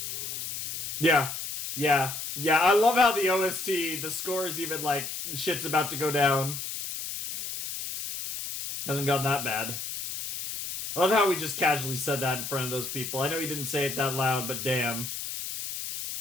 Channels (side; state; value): left; noise; hiss, 6 dB below the sound